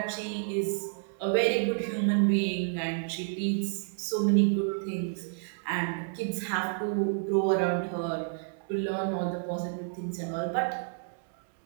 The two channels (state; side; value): silent; left; digital silence